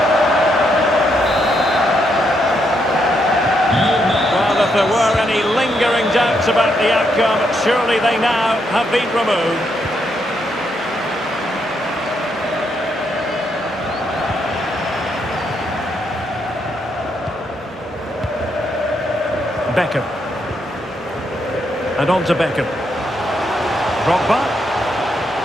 Well, if there were any lingering doubts about the outcome, surely they now have been removed. Beckham. And on to Beckham. Drogba.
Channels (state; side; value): normal; both; correlation 0.78